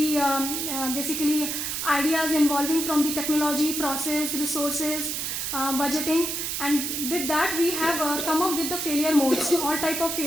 basically ideas involving from the technology, process, resources, budgeting, and with that we have come up with the failure modes, all type of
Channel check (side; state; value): right; noise; hiss, 2 dB below the sound